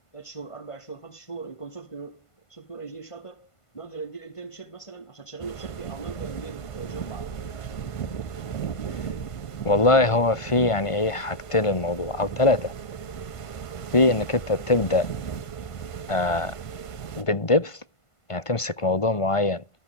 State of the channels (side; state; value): right; late; 1.5 ms